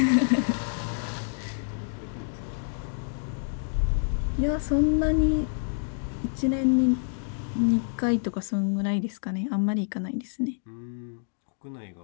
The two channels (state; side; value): silent; right; digital silence